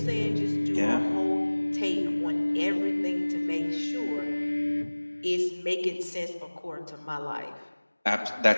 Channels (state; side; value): inverted; both; correlation -1.00